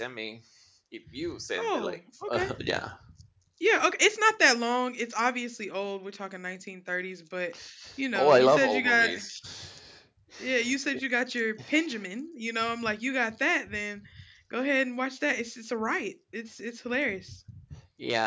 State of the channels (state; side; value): identical; both; correlation 1.00